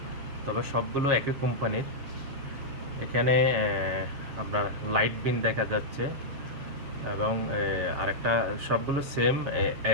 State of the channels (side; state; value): left; late; 7.5 ms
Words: তবে সবগুলো একই কোম্পানির। এখানে আপনার লাইট বিন দেখা যাচ্ছে এবং আরেকটা সবগুলো সেম